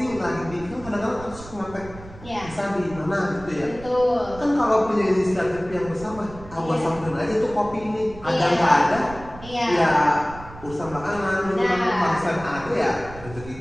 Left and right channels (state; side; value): noise; right; rumble, 16 dB below the sound